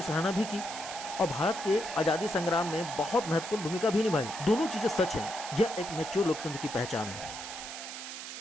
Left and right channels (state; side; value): noise; right; hiss, 9 dB below the sound